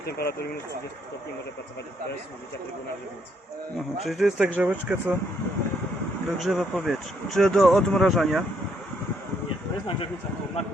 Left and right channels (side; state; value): both; normal; correlation 0.72